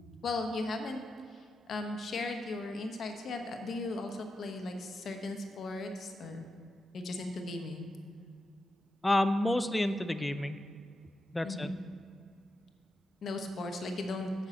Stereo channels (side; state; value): both; normal; correlation 0.88